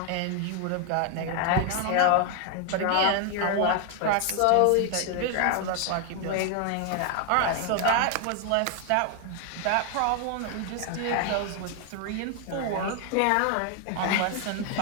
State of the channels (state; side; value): different; both; correlation 0.00